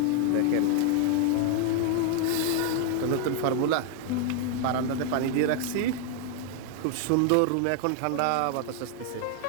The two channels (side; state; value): both; different; correlation 0.01